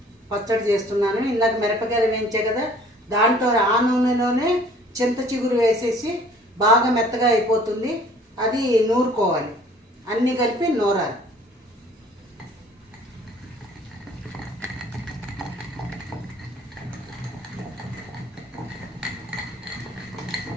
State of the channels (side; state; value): both; normal; correlation 0.54